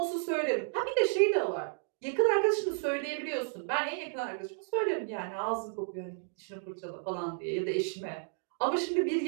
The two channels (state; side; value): silent; left; digital silence